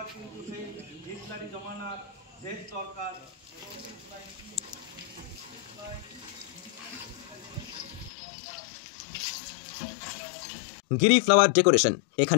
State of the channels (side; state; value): right; drops out; at 8.1 s